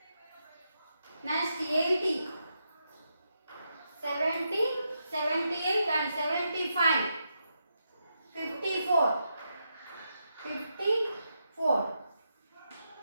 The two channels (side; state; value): both; inverted; correlation -0.84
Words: Next 80, 70, 78 and 75, 54, 54